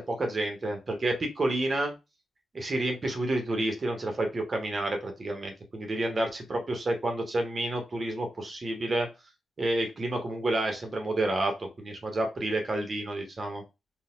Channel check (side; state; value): both; normal; correlation 0.89